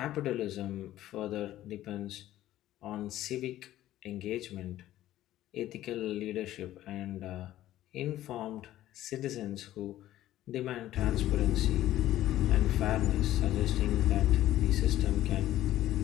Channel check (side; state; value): right; quieter; 13.9 dB